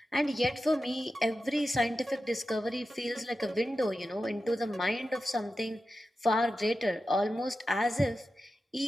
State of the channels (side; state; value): both; normal; correlation 0.92